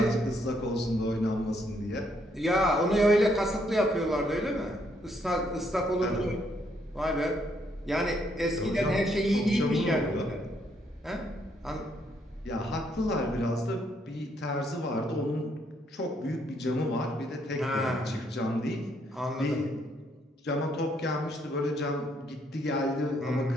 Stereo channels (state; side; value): normal; both; correlation 0.72